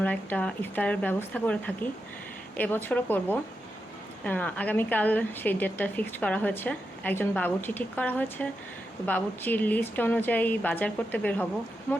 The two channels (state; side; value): normal; both; correlation 0.87